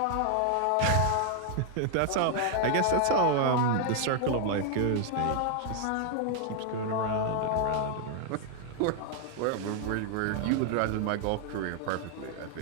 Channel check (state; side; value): different; both; correlation 0.00